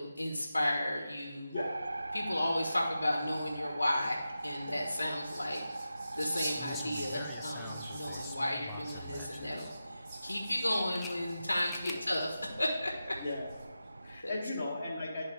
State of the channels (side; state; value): both; inverted; correlation -0.91